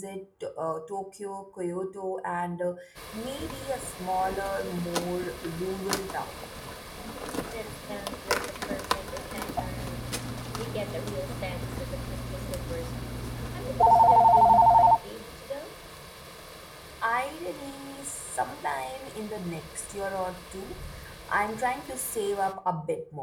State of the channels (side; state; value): both; identical; correlation 1.00